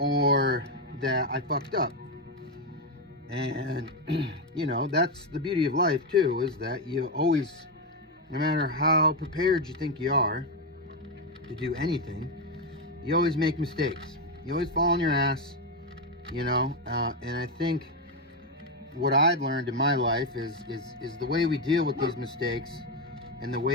that I fucked up. And you know, that's the beauty of life too, is that you always, no matter how prepared you think you are to do anything, you always make mistakes. You always fall on your ass, you know. And I think what I've learned in my life is the way we deal with these mistakes and the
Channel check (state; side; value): normal; both; correlation 0.07